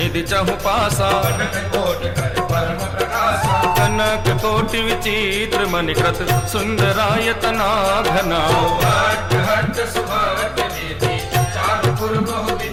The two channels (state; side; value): identical; both; correlation 1.00